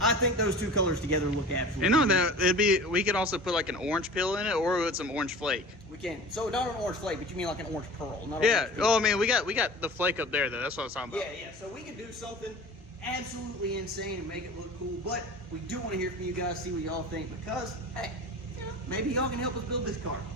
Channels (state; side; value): normal; both; correlation 0.39